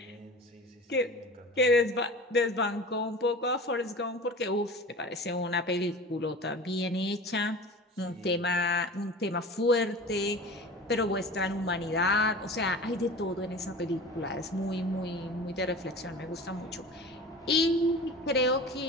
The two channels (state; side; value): normal; both; correlation 0.36